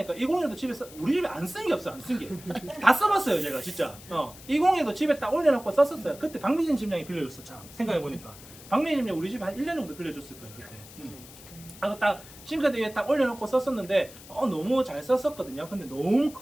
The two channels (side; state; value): left; noise; hiss, 18 dB below the sound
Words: 201도 집에 우리 집에 안 쓴 게 없어. 안 쓴 게 다 써봤어요 제가 진짜. 201도 집에 딱 올려놓고 썼었어요. 그때 박미진 집장이 빌려줬어. 참 생각해보니까 박미진 집장 우리 집에 한 1년 정도 빌려줬을 거예요 그때. 그래서 딱 싱크대 위에 딱 올려놓고 썼었는데 너무 잘 썼었거든요. 근데 너무